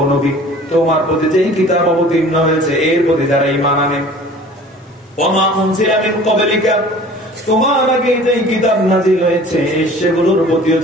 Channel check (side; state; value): both; normal; correlation 0.46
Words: নবী তোমার প্রতি যেই কিতাব অবতীর্ণ হয়েছে এর প্রতি যারা ঈমান আনে, ওমা উনজিলা মিন ক্বাবলিকা, তোমার আগে যেই কিতাব নাযিল হয়েছে সেগুলোর প্রতিও